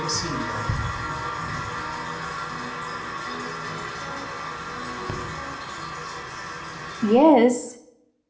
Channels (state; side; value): identical; both; correlation 1.00